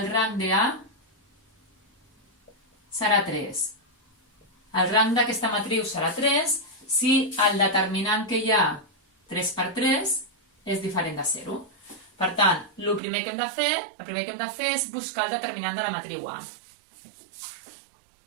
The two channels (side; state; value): left; drops out; at 13.0 s